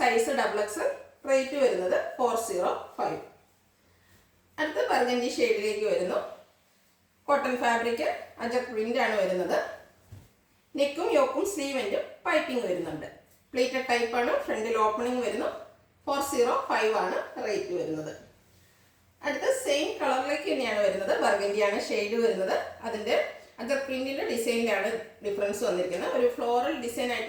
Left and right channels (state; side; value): identical; both; correlation 1.00